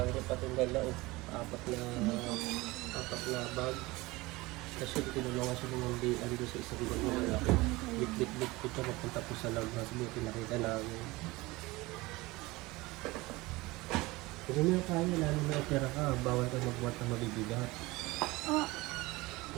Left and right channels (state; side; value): quieter; left; 21.5 dB